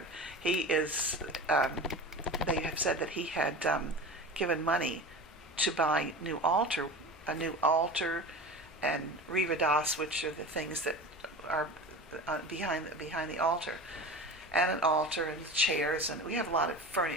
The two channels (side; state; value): both; normal; correlation 0.31